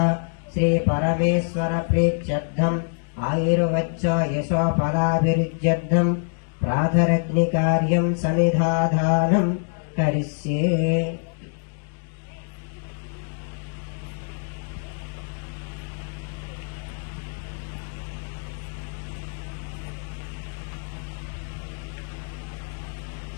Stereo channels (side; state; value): right; silent; digital silence